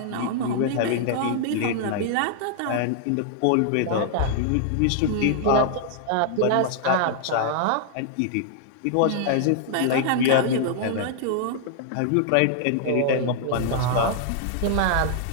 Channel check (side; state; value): both; different; correlation -0.01